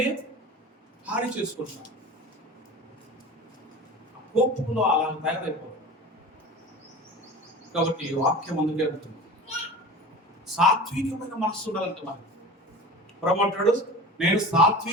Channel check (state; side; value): normal; both; correlation 0.35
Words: హాని చేసుకుంటాం. ఆ కోపంలో అలా తయారైపోతుంది. కాబట్టి వాక్యం అందుకే ఉంటుంది, సాత్వికమైన మనస్సు ఉండాలంటే మనకి. ప్రమాటాడు, నేను